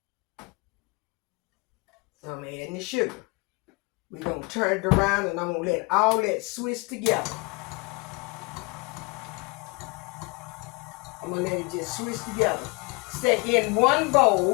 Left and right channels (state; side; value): quieter; right; 28.6 dB